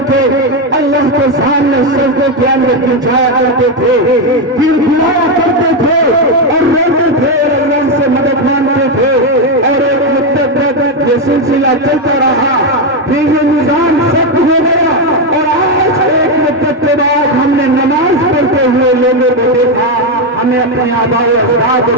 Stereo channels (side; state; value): both; normal; correlation 0.06